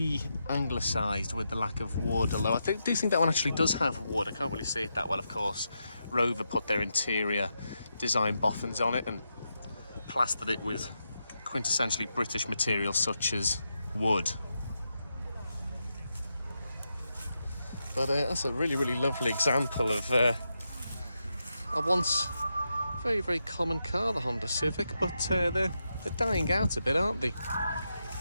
with the lack of wood, although I do think that one actually does have wood. I can't really see it that well, of course. Rover put their interior design boffins on it and plastered it with quintessentially British materials such as wood. But that's a really, really lovely example of a once very, very common car, the Honda Civic, but they're dying out a bit, aren't they?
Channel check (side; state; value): both; inverted; correlation -0.85